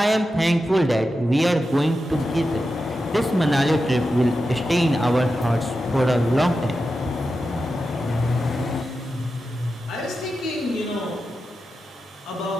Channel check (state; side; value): normal; both; correlation 0.90